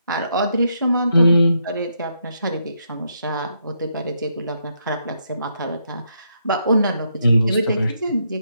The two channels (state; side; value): inverted; both; correlation -0.78